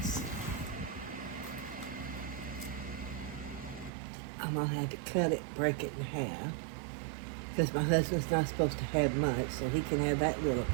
I'm going to have to cut it, break it in half, because my husband's not supposed to have much, so he can have that little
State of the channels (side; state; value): left; drops out; at 3.9 s